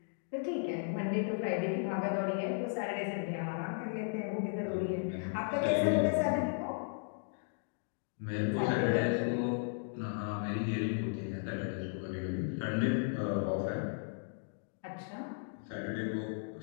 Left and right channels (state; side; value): silent; right; digital silence